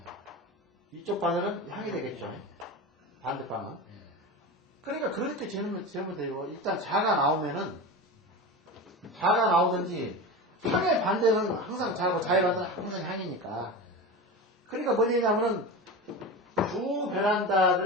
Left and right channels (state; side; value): normal; both; correlation 0.26